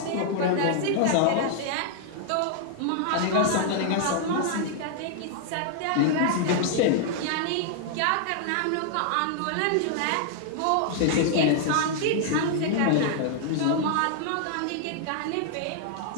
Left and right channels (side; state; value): both; different; correlation -0.01